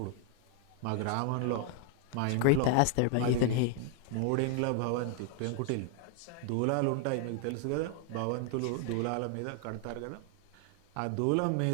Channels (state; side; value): different; both; correlation 0.00